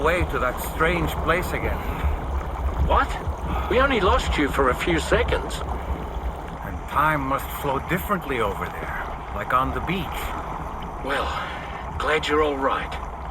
to that strange place again. What? We only lost you for a few seconds. And time must flow differently over there, like on the beach. Well, glad you're all right.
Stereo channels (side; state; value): both; identical; correlation 1.00